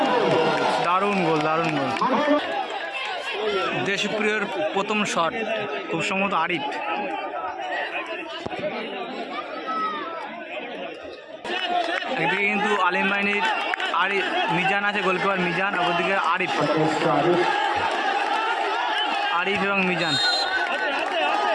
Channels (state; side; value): identical; both; correlation 1.00